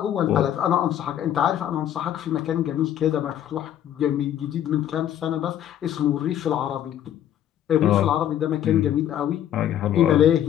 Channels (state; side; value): quieter; right; 10.9 dB